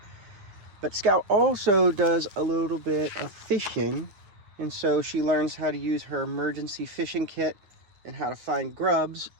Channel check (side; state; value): left; late; 10 ms